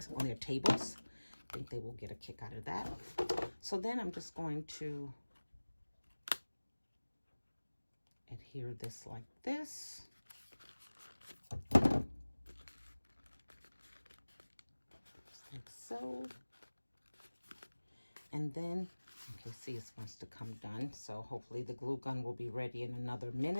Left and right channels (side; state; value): both; inverted; correlation -1.00